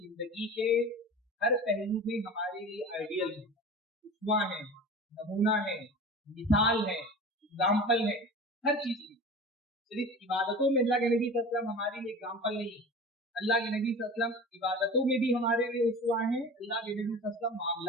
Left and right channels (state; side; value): normal; both; correlation 0.36